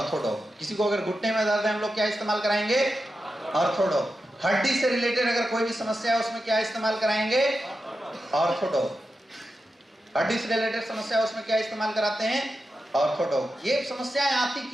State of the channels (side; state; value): both; normal; correlation 0.90